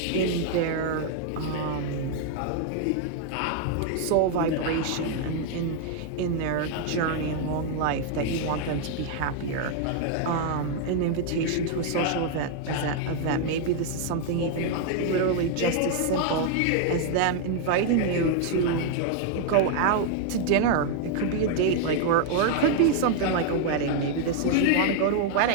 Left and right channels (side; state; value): both; different; correlation 0.00